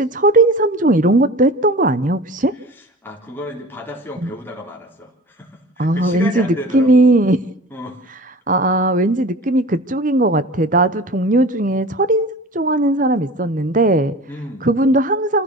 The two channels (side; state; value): both; normal; correlation 0.38